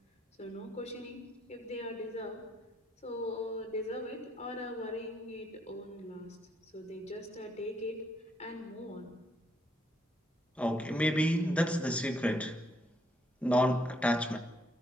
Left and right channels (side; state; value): both; normal; correlation 0.72